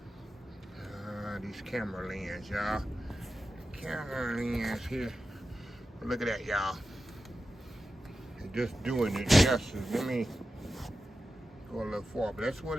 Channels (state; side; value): normal; both; correlation 0.92